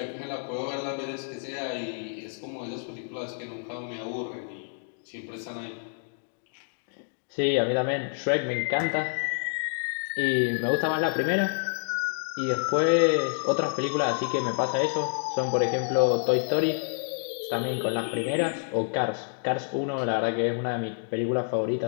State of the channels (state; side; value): silent; right; digital silence